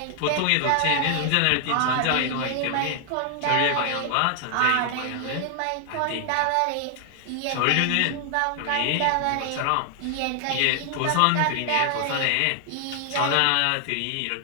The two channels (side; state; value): both; different; correlation 0.00